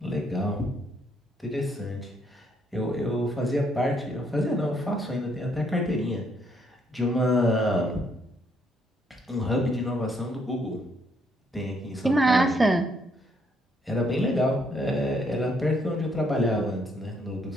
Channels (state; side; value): normal; both; correlation 0.70